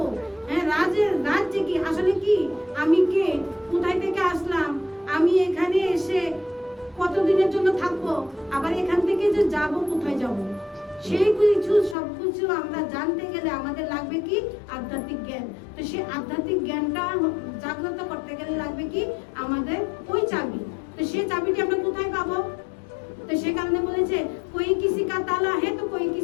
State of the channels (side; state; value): right; drops out; at 12.0 s